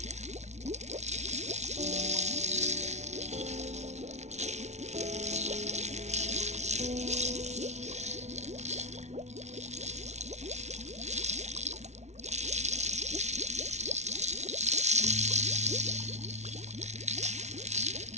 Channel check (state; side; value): late; left; 0.32 ms